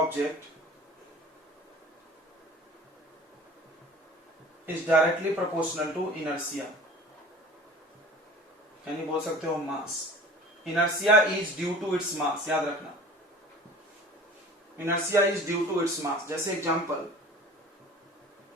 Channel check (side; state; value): both; normal; correlation 0.43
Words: is directly proportional to inertia, यानी बोल सकते हो mass. Inertia is due to its mass, याद रखना, inertia is due to its mass. जैसे example